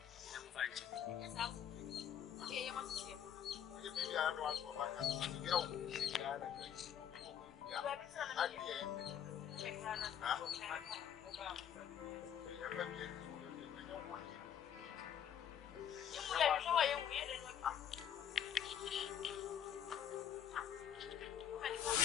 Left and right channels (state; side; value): quieter; right; 9.3 dB